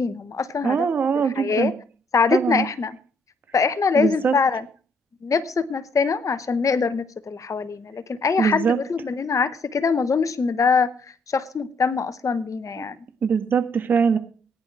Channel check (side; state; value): both; normal; correlation 0.68